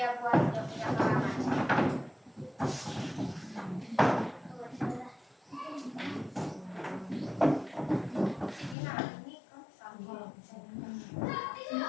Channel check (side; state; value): right; drops out; at 8.8 s